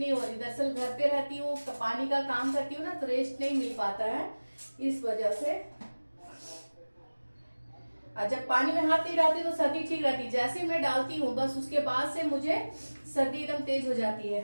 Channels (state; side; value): inverted; both; correlation -1.00